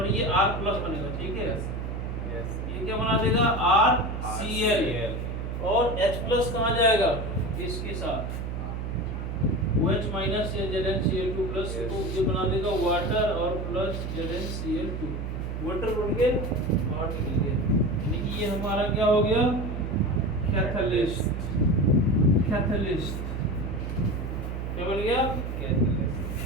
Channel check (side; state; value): right; noise; hum, 4 dB below the sound